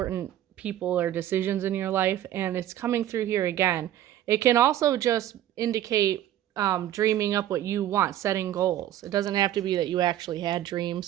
people or decisions in your life. And it's coming through here again. It can also just indicate dreaming up what you want, setting goals. It doesn't have to be that you actually had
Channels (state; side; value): quieter; left; 12.3 dB